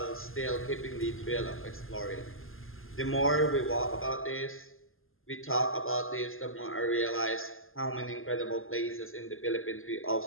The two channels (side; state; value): right; late; 0.60 ms